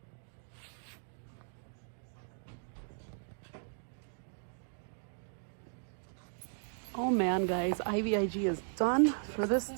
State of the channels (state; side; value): silent; left; digital silence